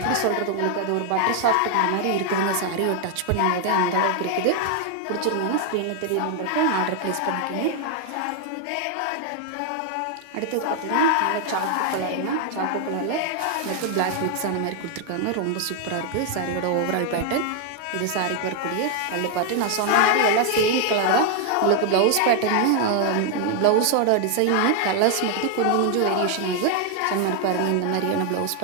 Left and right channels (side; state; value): both; different; correlation 0.00